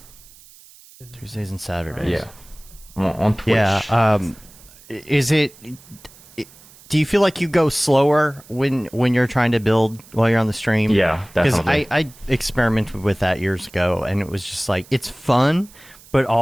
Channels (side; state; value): right; noise; hiss, 24 dB below the sound